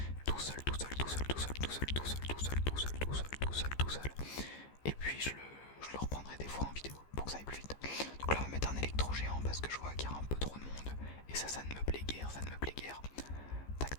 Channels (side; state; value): right; late; 15 ms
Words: tout seul. Et puis je le reprendrai des fois en vidéo pour que ça aille plus vite. Donc là on va mettre un électro géant parce que je vois qu'il y a un peu trop de monde. Et ça ne me plaît guère,